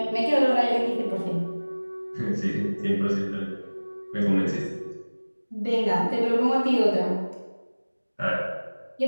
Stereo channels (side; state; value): both; inverted; correlation -1.00